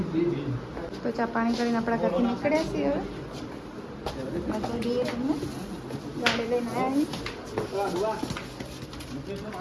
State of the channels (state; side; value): identical; both; correlation 1.00